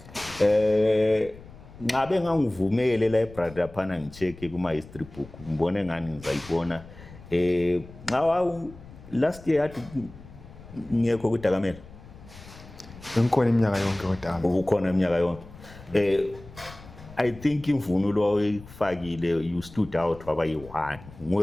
ngabe ngangivumele library laphana ngicheck kuma-history book ngibone ngani ngizayibona last year yathi ngekho kuDakamele bengikhona iminyaka yonke kodwa ubukhona iminyaka yonke I think imvunulo oyifakile you stood out waba yi-1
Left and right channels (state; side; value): noise; left; rumble, 18 dB below the sound